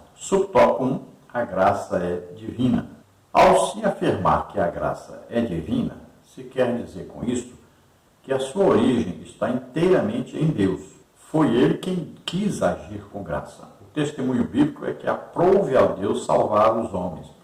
Subtópico 1, a graça é divina. Ao se afirmar que a graça é divina, se quer dizer com isso que a sua origem está inteiramente em Deus. Foi Ele quem quis agir com graça. O testemunho bíblico é que aprove a Deus salvar os homens.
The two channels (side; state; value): both; identical; correlation 1.00